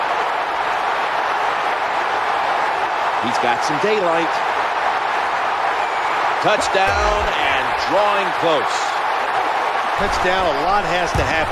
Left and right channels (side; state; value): both; identical; correlation 1.00